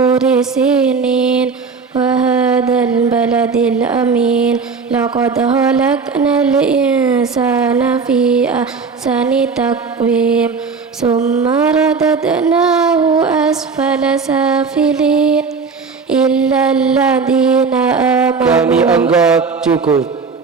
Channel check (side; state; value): left; quieter; 5.0 dB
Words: sinin wa hadzal baladil amin. Laqad khalaqnal insana fi ahsani taqwim. Summa radadnahu asfala safilin. إلا الذين Kami آمنوا. anggap cukup.